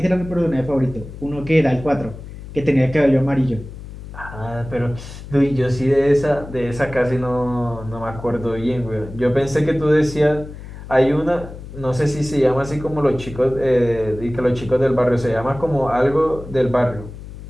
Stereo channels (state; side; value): noise; left; hum, 13 dB below the sound